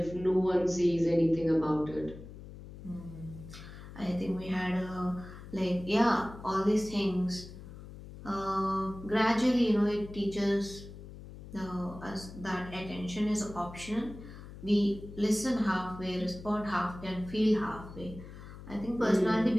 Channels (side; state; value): left; noise; hum, 14 dB below the sound